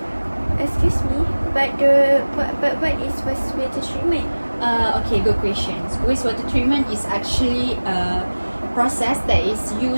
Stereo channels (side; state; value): both; inverted; correlation -1.00